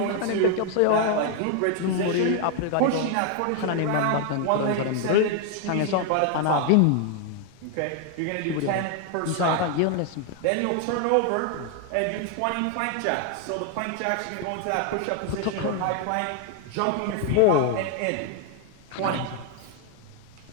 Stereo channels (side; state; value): both; different; correlation 0.01